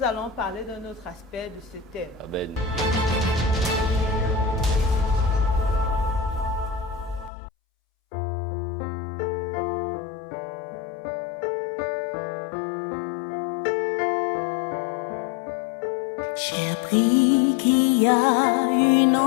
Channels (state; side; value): drops out; right; at 7.3 s